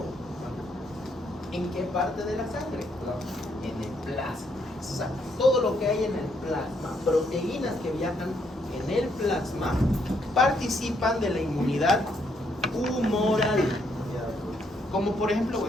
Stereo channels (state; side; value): normal; both; correlation 0.73